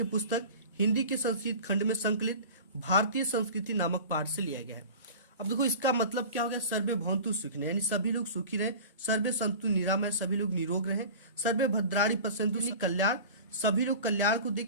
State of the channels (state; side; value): inverted; both; correlation -0.37